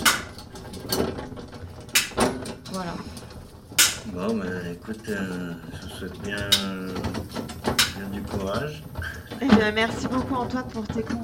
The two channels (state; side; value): identical; both; correlation 1.00